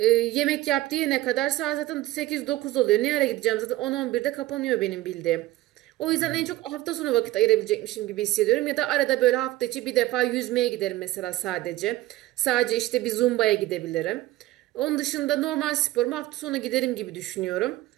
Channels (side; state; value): left; quieter; 16.6 dB